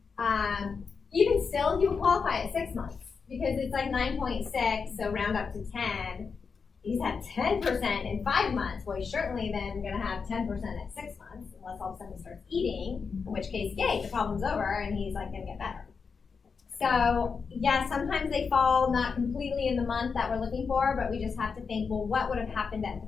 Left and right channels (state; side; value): quieter; right; 5.4 dB